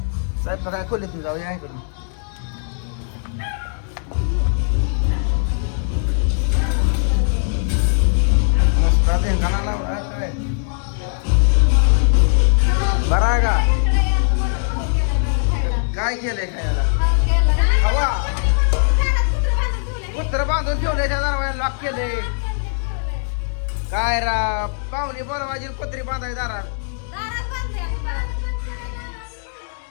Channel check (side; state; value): right; silent; 66 dB below the other